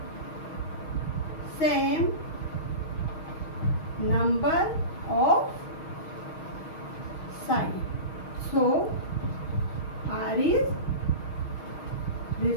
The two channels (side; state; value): right; late; 6.4 ms